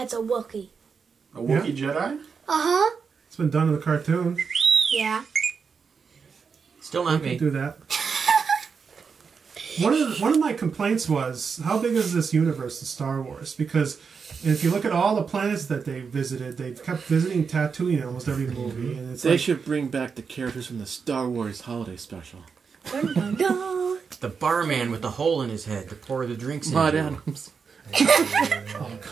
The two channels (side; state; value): left; quieter; 5.7 dB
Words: a Wookiee. A Wookiee Jedi? Uh-huh. It's been done in the cartoon. Yeah. Still not Could me. do that. One of my complaints was, how big is this universe of Star Wars? Because if you look at all the planets that they visited, they've kept visiting Tatooine in almost every movie, and it's They like, should bring back the characters from the Star Wars holiday special. Dun, dun, dun. The barman with the hole in his head to pour the drinks Maud into. Adams. oh